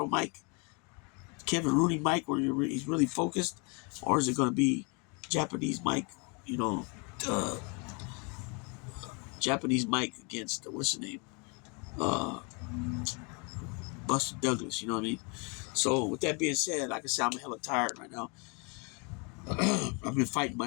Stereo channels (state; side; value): quieter; right; 32.9 dB